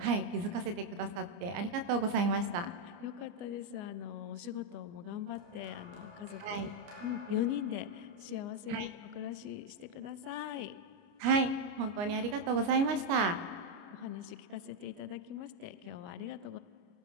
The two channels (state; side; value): late; left; 29 ms